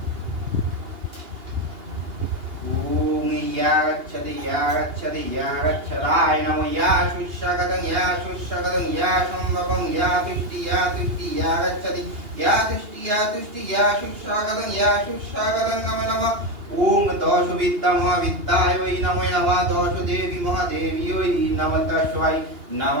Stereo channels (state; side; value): late; left; 2.8 ms